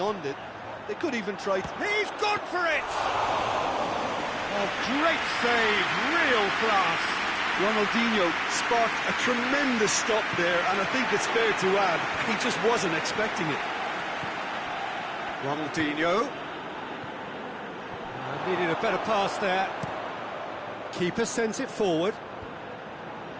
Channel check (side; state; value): both; identical; correlation 1.00